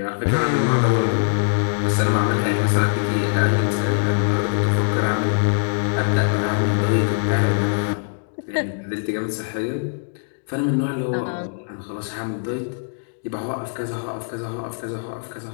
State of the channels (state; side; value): silent; right; digital silence